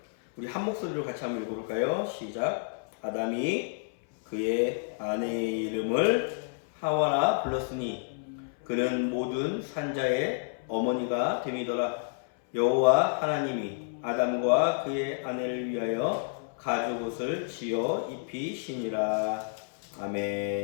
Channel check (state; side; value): silent; right; 58 dB below the other